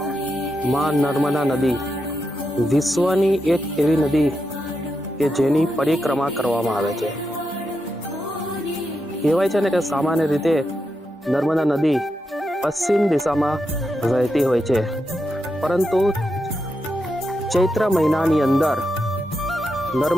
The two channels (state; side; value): normal; both; correlation 0.86